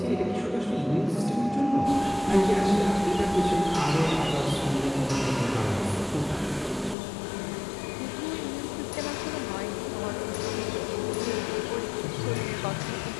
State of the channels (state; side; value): drops out; right; at 7.0 s